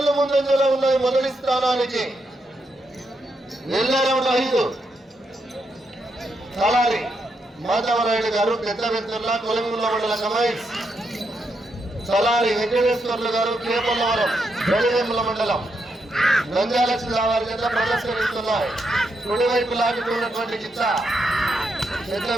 ముందంజలో ఉన్నాయి మొదటి స్థానానికి. వెళ్ళే రౌండ్ 5 తలారి మాధవరాయుడు గారు పెద్దవెత్తుర్ల కొలంగుల మండల కమైన్స్, తలారి వెంకటేశ్వర్లు గారు కేపల్లవరం గడివేముల మండలం నంద్యాల జిల్లా వారి చేత ప్రదర్శనిస్తున్నాయి. కుడివైపు లాగుతున్నటువంటి గిచ్చ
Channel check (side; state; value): both; normal; correlation 0.81